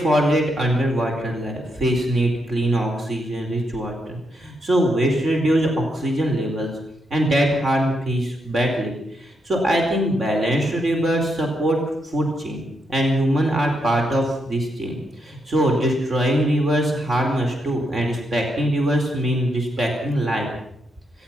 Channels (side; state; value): both; normal; correlation 0.80